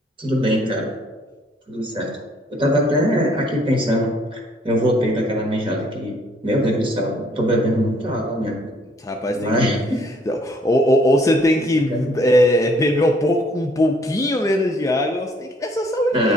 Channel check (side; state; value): both; normal; correlation 0.63